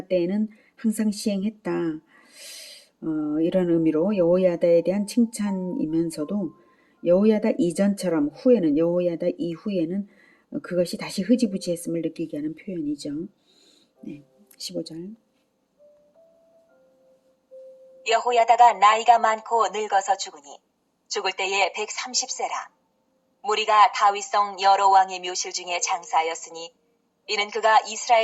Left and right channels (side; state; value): both; identical; correlation 1.00